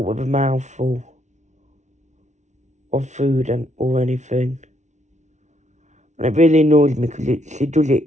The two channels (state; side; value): late; left; 0.34 ms